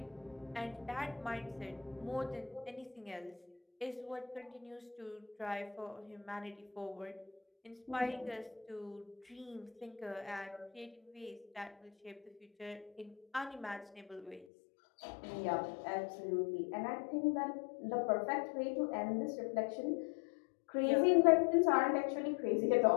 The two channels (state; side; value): drops out; right; at 14.5 s